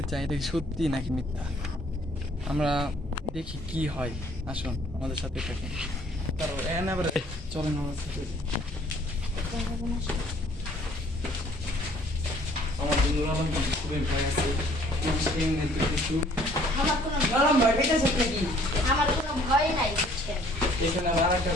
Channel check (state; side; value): normal; both; correlation 0.58